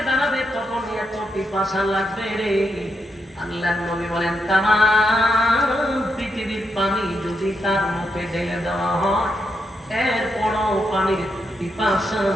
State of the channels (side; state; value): both; normal; correlation 0.82